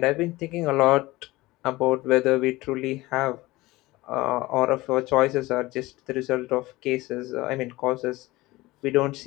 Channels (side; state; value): right; quieter; 19.8 dB